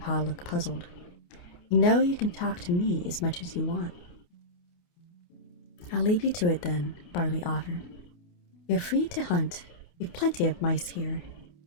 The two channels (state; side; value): late; right; 28 ms